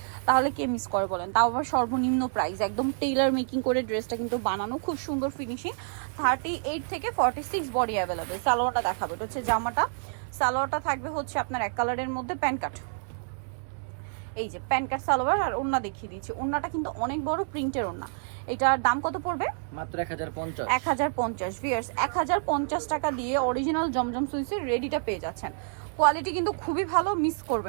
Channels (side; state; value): left; silent; digital silence